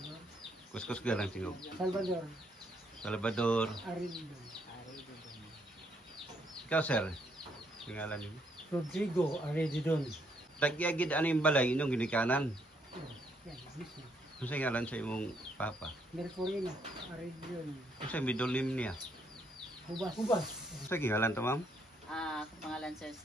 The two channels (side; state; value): both; normal; correlation 0.72